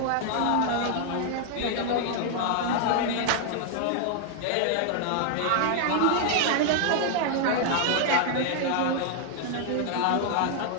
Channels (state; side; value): different; both; correlation 0.00